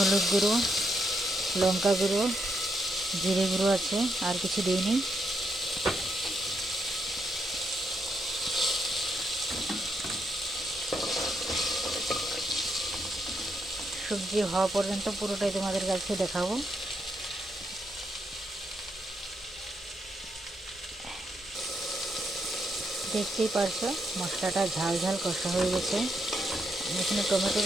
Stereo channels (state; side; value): normal; both; correlation 0.79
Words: গুঁড়ো, লঙ্কা গুঁড়ো, জিরে গুঁড়ো আছে, আর কিছু দিইনি। সবজি হওয়া পর্যন্ত পুরোটাই তোমাদের কাছে দেখাবো। দেখতেই পারছো মশলাটা ঝাল ঝাল কষা হয়ে গেছে। আমি এখানে টমেটো